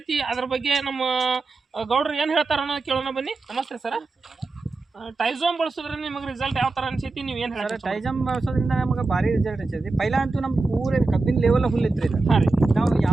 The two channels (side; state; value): left; quieter; 3.6 dB